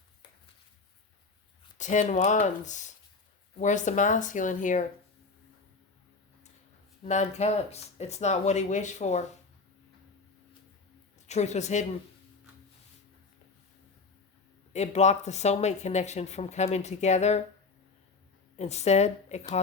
10 Wands. Where's the masculine here? 9 Cups. It's not what he wished for. The truth was hidden. It blocked the soulmate connection from coming together. Instead, it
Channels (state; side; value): quieter; right; 4.2 dB